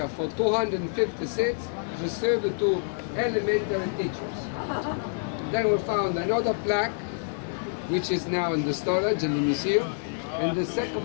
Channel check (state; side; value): silent; right; digital silence